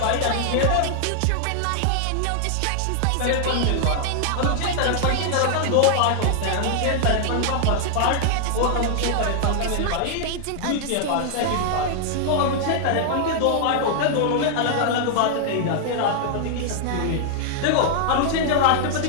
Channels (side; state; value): both; different; correlation 0.00